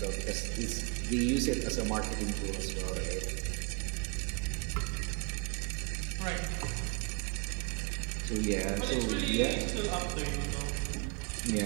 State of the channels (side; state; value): left; quieter; 33.3 dB